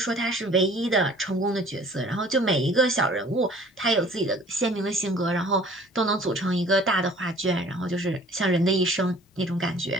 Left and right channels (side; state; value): both; normal; correlation 0.51